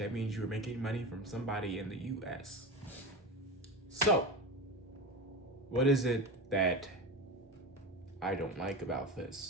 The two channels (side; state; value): both; normal; correlation 0.24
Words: means you're making money from somebody in the US. So, what is it that I don't like about